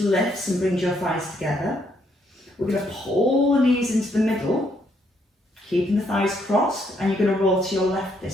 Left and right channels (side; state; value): both; normal; correlation 0.72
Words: and brings your thighs together. We're going to pull the knees into the middle, keeping the thighs crossed, and you're going to roll to your left